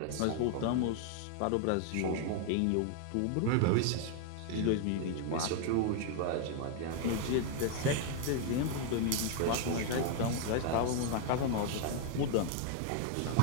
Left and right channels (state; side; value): different; both; correlation 0.00